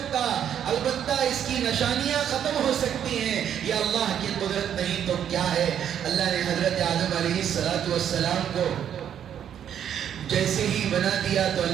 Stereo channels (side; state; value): left; quieter; 9.4 dB